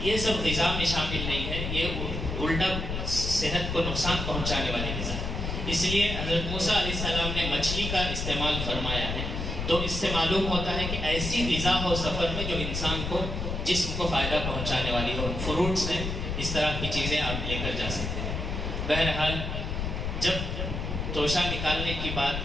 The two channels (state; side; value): noise; left; rumble, 3 dB below the sound